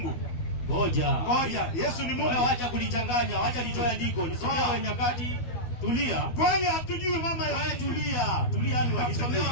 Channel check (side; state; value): right; late; 12 ms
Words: Ngoja. Yesu ni Mungu. Wewe acha kulichanganya, acha nitoe andiko. Nisomewe Nyakati. Tulia. Kwani hatujui mama ya Yesu? Tulia ni wakisomewa